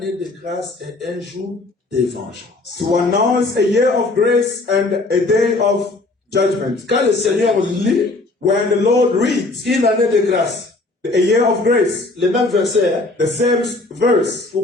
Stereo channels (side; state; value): right; quieter; 3.1 dB